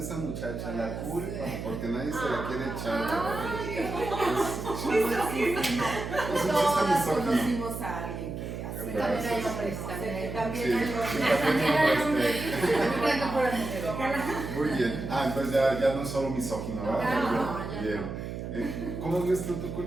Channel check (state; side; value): noise; right; hum, 6 dB below the sound